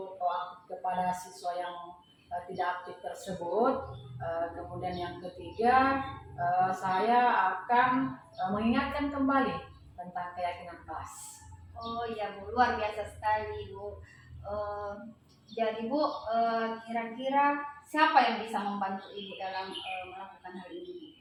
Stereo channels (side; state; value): both; identical; correlation 1.00